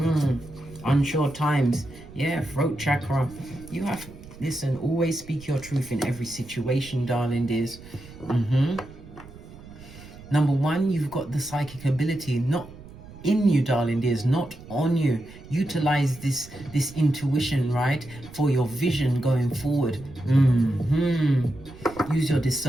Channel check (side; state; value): right; noise; rumble, 18 dB below the sound